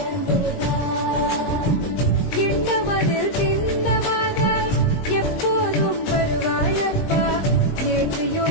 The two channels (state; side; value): late; right; 20 ms